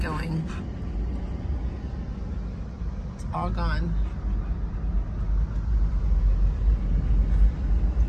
It's all gone.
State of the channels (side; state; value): both; identical; correlation 1.00